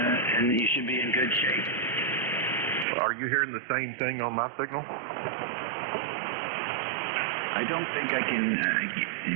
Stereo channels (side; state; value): left; drops out; at 2.9 s